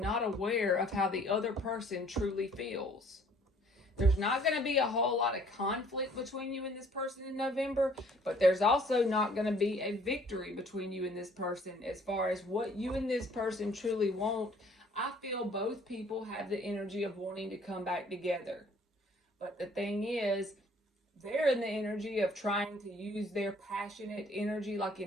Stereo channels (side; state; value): both; normal; correlation 0.58